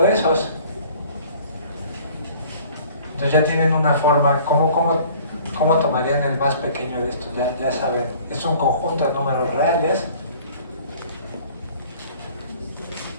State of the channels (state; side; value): inverted; both; correlation -0.51